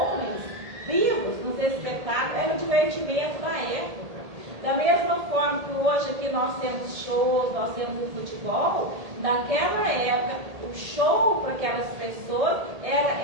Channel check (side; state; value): left; late; 1.8 ms